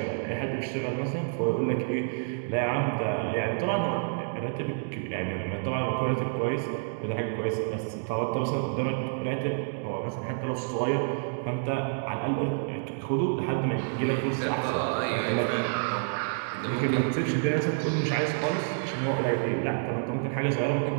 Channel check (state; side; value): silent; left; digital silence